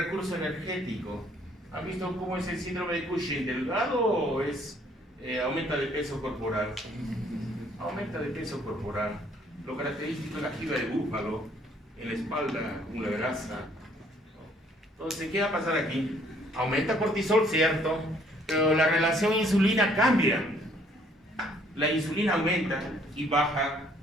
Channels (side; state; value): both; normal; correlation 0.63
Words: energético. ¿Han visto cómo es el síndrome de Cushing? ¿Delgado o es aumenta de peso corporal? Aumenta de peso corporal. Lo característico es la jiba de búfalo, en la espalda, una grasa. Entonces, ¿qué va a pasar aquí? Aumenta cortisol, cierto, pero la relación insulina cambia. La insulina aumenta y baja